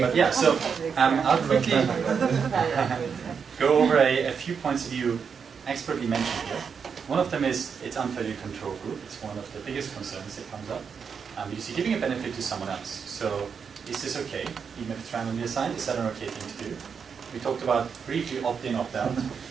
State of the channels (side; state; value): left; quieter; 6.4 dB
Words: but yeah. So I'll quickly go over a few points that you expertly mentioned here. One of them is it's unfairly control group. It's one of the biggest concerns that comes up. Because you're giving a benefit to someone else. So is this okay? Even if it's randomly assigned, is that an okay thing to do? We talked about briefly opt-in, opt-out.